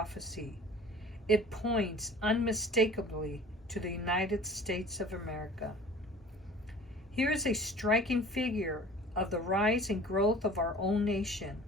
It points unmistakably to the United States of America. Here is a striking figure of the rise and growth of our own nation,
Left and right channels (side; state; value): both; normal; correlation 0.46